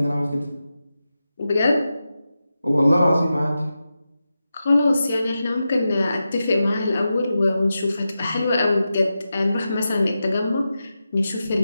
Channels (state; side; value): inverted; both; correlation -0.91